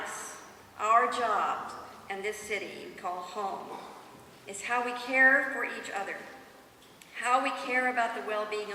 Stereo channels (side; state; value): both; identical; correlation 1.00